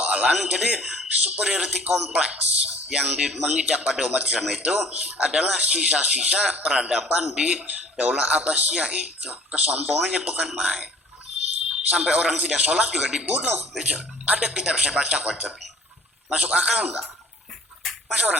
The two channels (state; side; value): normal; both; correlation 0.51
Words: Jadi superiority kompleks yang mengidap pada umat Islam itu adalah sisa-sisa peradaban di Daulah Abbasiyah itu. Kesombongannya bukan main. Sampai orang tidak sholat juga dibunuh. Ada kitab saya baca kok. Masuk akal enggak? Masa